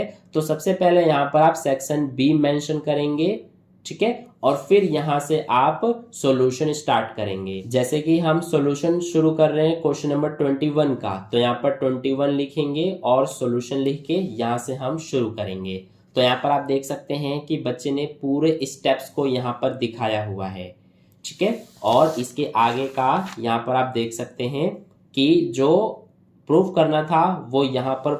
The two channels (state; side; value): identical; both; correlation 1.00